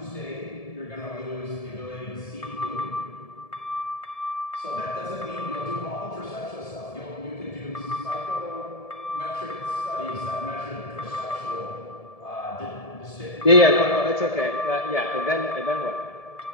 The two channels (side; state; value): right; late; 1.7 ms